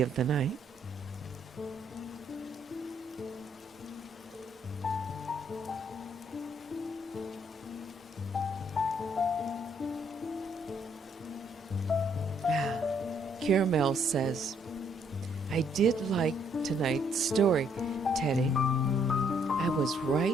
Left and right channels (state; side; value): normal; both; correlation 0.68